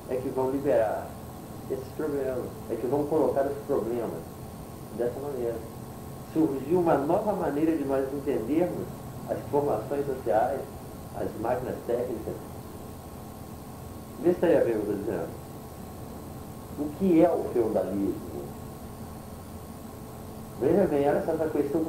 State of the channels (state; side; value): identical; both; correlation 1.00